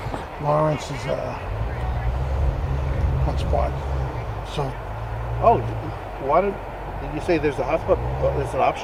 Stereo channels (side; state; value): both; identical; correlation 1.00